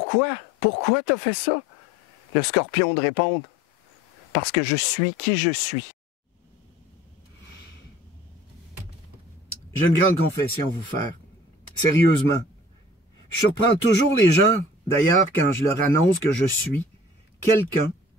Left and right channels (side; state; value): both; normal; correlation 0.48